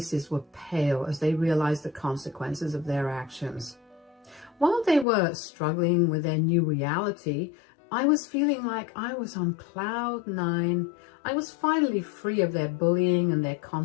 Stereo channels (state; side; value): drops out; right; at 5.1 s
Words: were pale as they realized the consequences of their actions. While they were struggling with their new reality, I was feeling like I was on cloud 9. I was finally free of their bullying and their